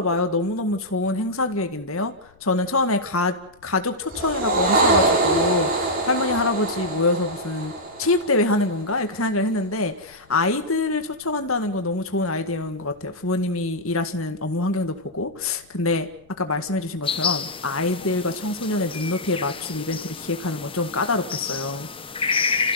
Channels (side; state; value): left; noise; rumble, 30 dB below the sound